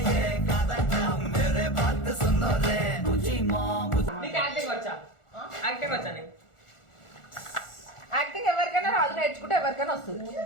యాక్టింగ్ ఎవరికైనా రాజు నేర్చుకుంటే ఎవరికైనా వస్తుంది.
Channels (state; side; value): late; right; 1.4 ms